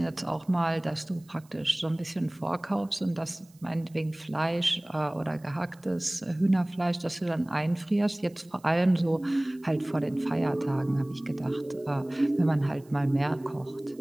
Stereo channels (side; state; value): right; noise; hiss, 29 dB below the sound